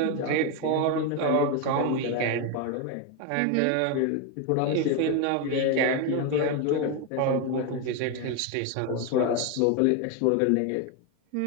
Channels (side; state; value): both; different; correlation 0.02